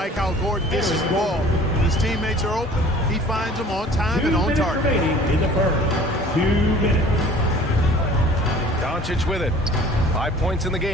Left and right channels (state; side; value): normal; both; correlation 0.48